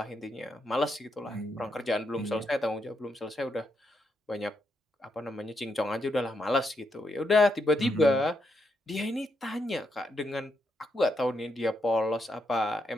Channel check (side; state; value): both; normal; correlation 0.80